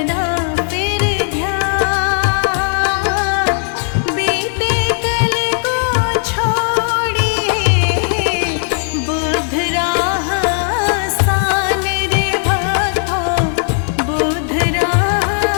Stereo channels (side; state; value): right; silent; 60 dB below the other